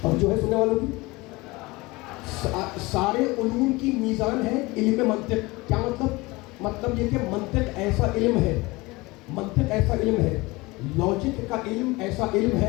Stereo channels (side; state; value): right; quieter; 22.7 dB